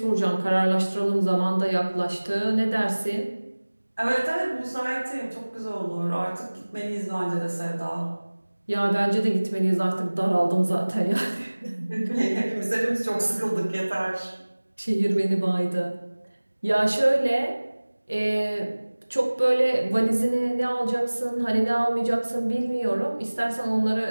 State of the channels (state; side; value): inverted; both; correlation -1.00